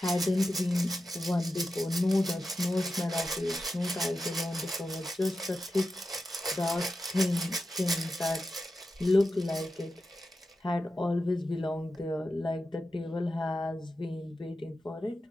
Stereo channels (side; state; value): both; normal; correlation 0.91